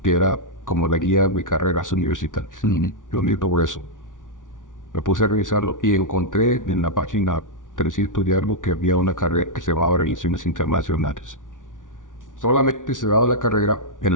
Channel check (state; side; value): late; right; 0.88 ms